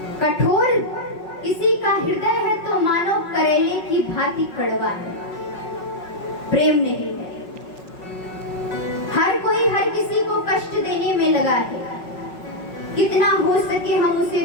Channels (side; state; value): right; late; 5.4 ms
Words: कठोर किसी का हृदय है तो मानो करेले की भांति कड़वा है, प्रेम नहीं है। हर कोई हर किसी को कष्ट देने में लगा है, कितना हो सके हम उसे